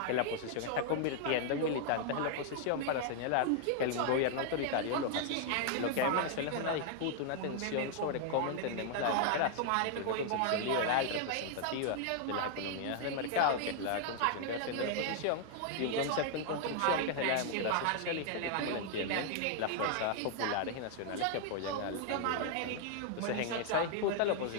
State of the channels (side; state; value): both; different; correlation 0.00